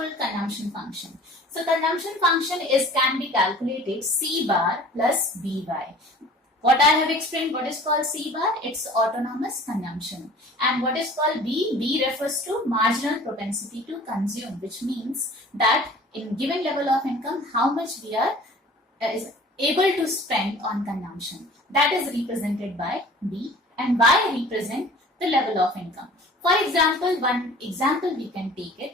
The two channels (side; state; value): both; normal; correlation 0.47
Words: consumption function. So consumption function can be calculated C bar plus BY. What I have explained, what is called C bar? It's autonomous consumption. And what is called B? B refers to marginal propensity to consume, which means that in given level of income, how much we are is able to spend on consumption. That is represented by B, and Y represent the level of income. For example, one example we can take it,